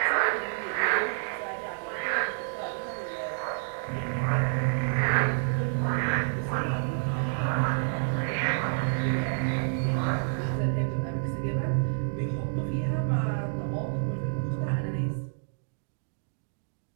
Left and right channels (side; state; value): left; silent; digital silence